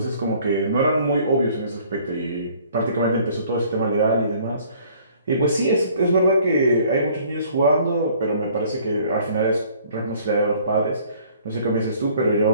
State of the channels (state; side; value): inverted; both; correlation -0.57